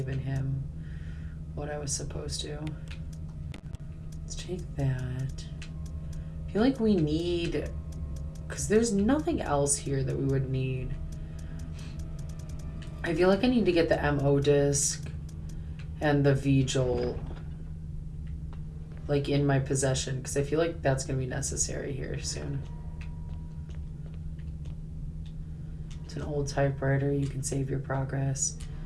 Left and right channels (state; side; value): identical; both; correlation 1.00